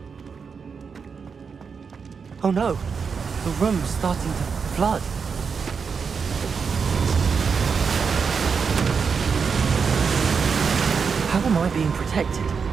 Oh no, the room's starting to flood. How am I being protected?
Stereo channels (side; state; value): left; quieter; 5.8 dB